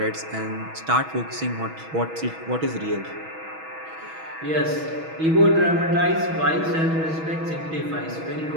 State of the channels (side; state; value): left; late; 6.2 ms